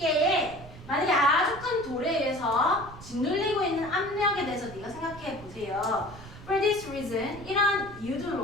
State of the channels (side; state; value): right; noise; rumble, 16 dB below the sound